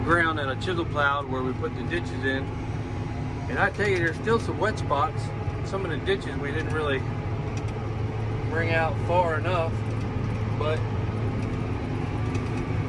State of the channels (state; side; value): identical; both; correlation 1.00